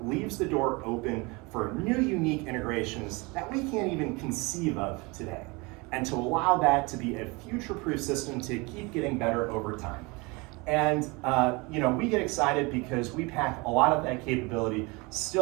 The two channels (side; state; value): left; quieter; 26.6 dB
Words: leaves the door open for new unique integrations that we can't even conceive of today, and to allow that to be a future-proof system to keep getting better over time. And we get excited because we pack a lot of that capability